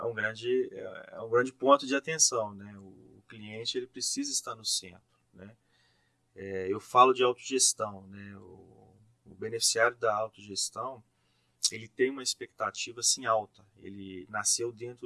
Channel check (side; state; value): both; identical; correlation 1.00